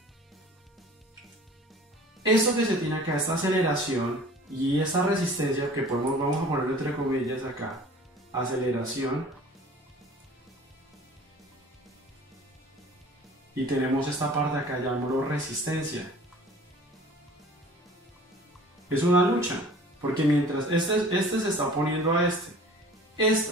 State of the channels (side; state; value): both; normal; correlation 0.46